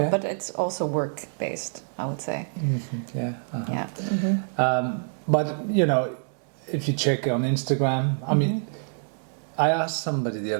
But it's also work based, I would say. Mm-hmm. Yeah. Uh-huh. Yeah. Mm-hmm. But if you check on Instagram, I mean, I asked somebody the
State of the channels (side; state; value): left; silent; digital silence